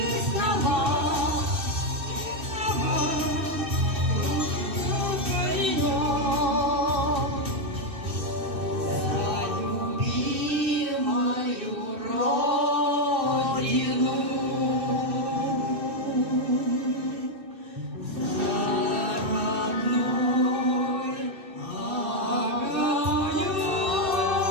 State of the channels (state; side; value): late; left; 2.6 ms